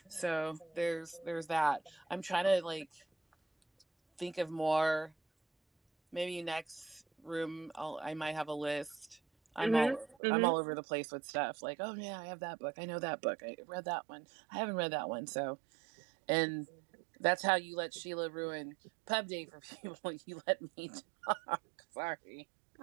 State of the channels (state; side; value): drops out; left; at 10.2 s